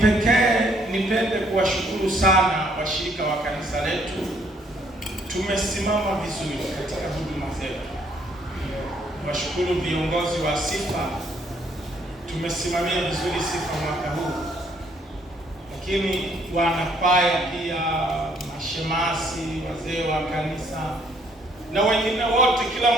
nipende kuwashukuru sana washirika wa kanisa letu. Tumesimama vizuri katika huduma zetu. Washukuru viongozi wa sifa. Tumesimamia vizuri sifa mwaka huu. Lakini wanakwaya pia, mashemasi, wazee wa kanisa na wengine wote, kila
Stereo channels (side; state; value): both; normal; correlation 0.66